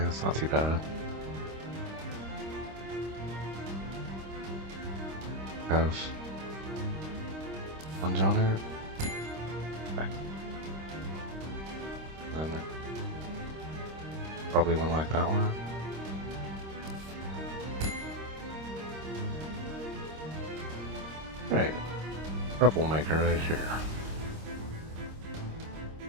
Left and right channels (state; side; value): late; left; 26 ms